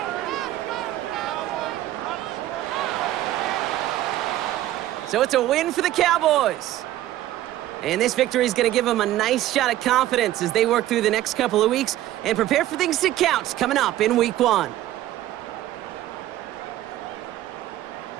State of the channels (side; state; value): left; quieter; 14.1 dB